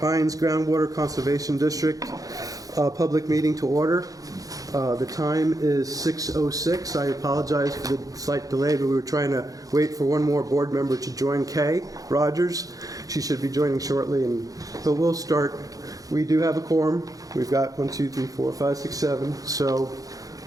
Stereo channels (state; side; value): late; left; 0.17 ms